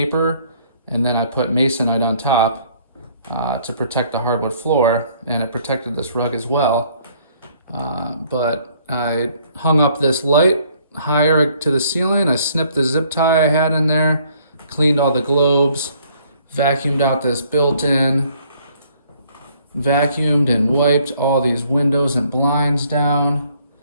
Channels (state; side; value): inverted; both; correlation -0.62